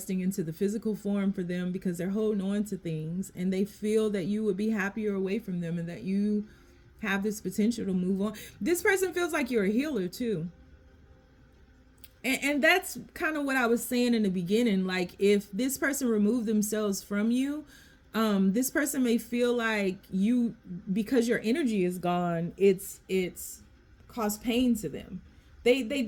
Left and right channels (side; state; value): both; identical; correlation 1.00